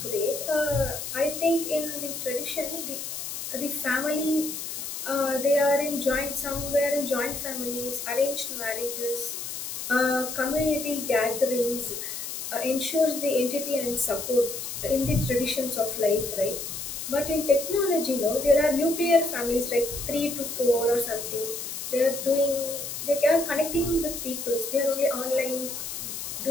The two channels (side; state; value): left; noise; hiss, 6 dB below the sound